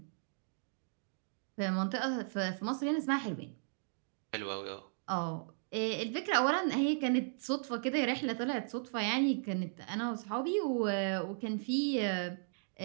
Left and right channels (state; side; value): silent; left; digital silence